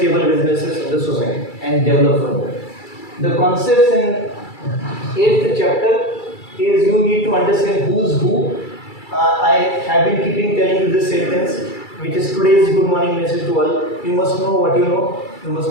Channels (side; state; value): right; late; 2.3 ms